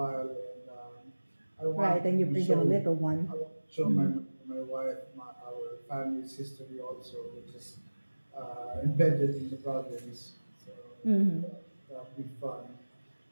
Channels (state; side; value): inverted; both; correlation -1.00